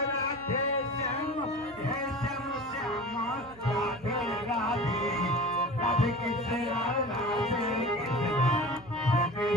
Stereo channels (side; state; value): right; noise; hum, 23 dB below the sound